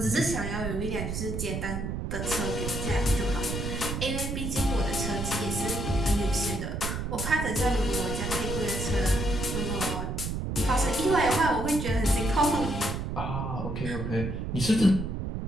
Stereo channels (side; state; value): right; noise; rumble, 3 dB below the sound